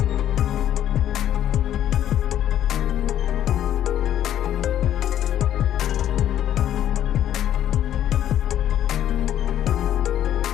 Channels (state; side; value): quieter; right; 11.2 dB